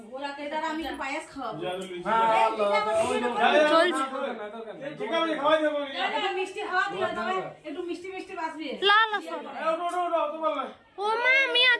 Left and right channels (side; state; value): both; identical; correlation 1.00